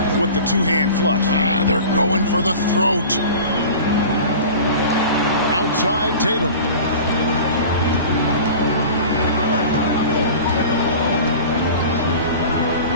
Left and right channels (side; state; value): both; inverted; correlation -0.38